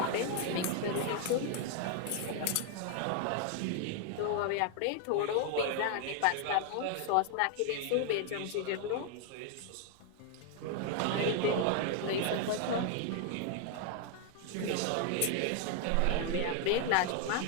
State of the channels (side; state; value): both; different; correlation 0.00